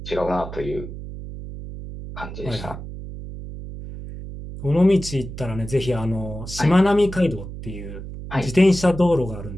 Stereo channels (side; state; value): right; noise; hum, 10 dB below the sound